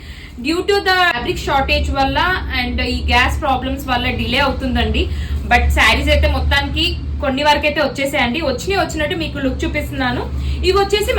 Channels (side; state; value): both; identical; correlation 1.00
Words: Due to the fabric shortage వల్ల అండ్ ఈ గ్యాస్ ప్రాబ్లమ్స్ వల్ల డిలే అవుతుందండి. బట్ శారీస్ అయితే మొత్తానికి కొన్ని వరకు అయితే వచ్చేసాయండి. వచ్చినట్టు మీకు లుక్ చూపిస్తున్నాను. ఇవి వచ్చేసి